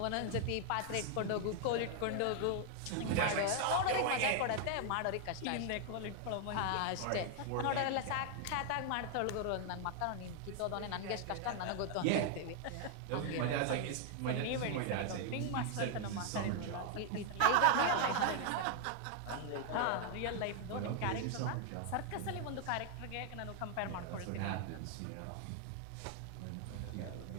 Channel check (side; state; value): both; different; correlation 0.00